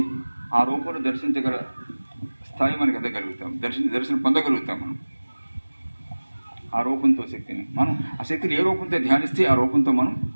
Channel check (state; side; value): inverted; both; correlation -1.00